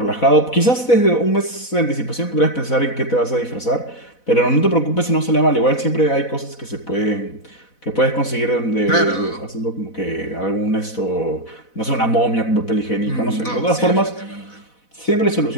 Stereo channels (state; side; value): late; right; 4.1 ms